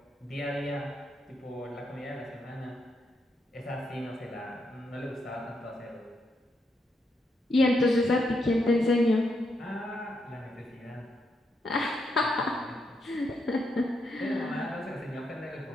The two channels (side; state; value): both; normal; correlation 0.80